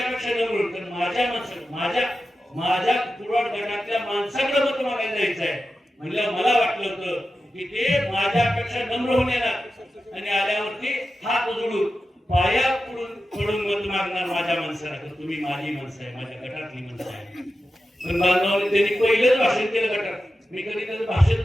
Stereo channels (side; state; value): both; normal; correlation 0.92